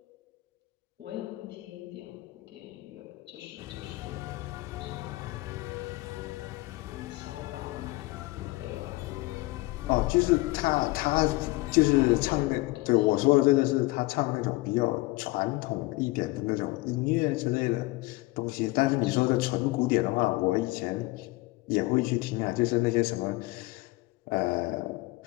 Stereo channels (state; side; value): quieter; right; 21.1 dB